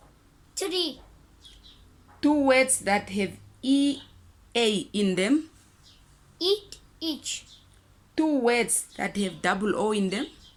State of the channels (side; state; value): both; identical; correlation 1.00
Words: tree. 2 words that have EA in them. Eat, each. 2 words that have double O in them.